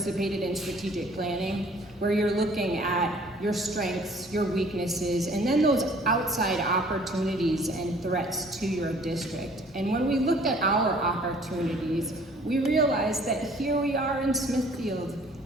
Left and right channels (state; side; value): normal; both; correlation 0.54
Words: in strategic planning, where you're looking at your strengths, your weaknesses, and then those outside opportunities and threats to your district. And when we looked at our opportunities, we realized that here we are in Smithfield,